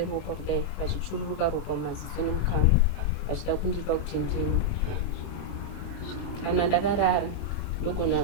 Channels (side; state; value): left; late; 5.6 ms